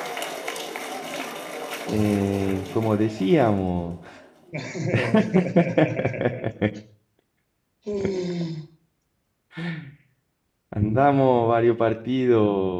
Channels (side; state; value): both; identical; correlation 1.00